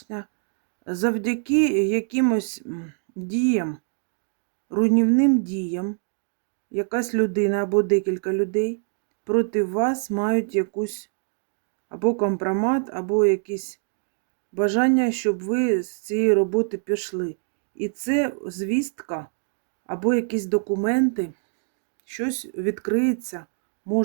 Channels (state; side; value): silent; left; 62 dB below the other